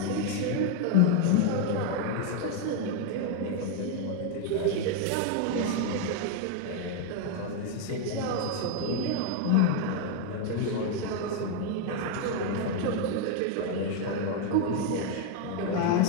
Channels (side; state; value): both; different; correlation 0.01